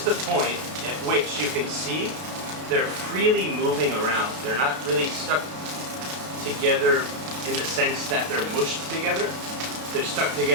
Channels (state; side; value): late; left; 32 ms